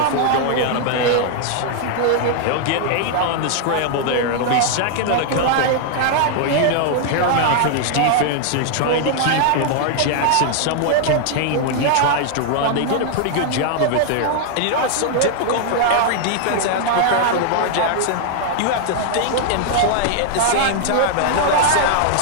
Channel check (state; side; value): different; both; correlation 0.00